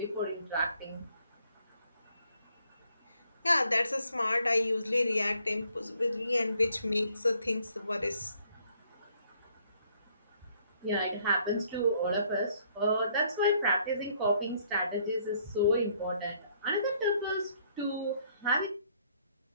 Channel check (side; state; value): both; inverted; correlation -0.67